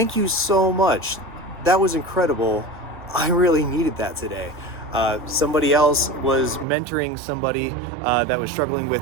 you so much. That was incredible. I really needed that today." Somebody else was mentoring somebody that was struggling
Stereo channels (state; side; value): drops out; left; at 6.7 s